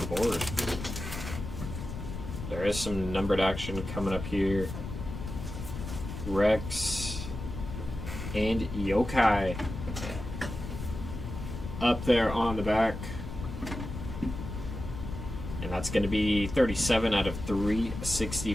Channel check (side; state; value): left; noise; rumble, 8 dB below the sound